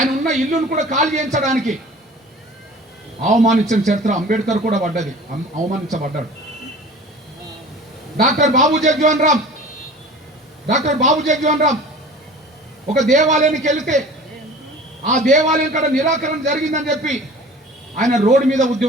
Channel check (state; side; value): normal; both; correlation 0.42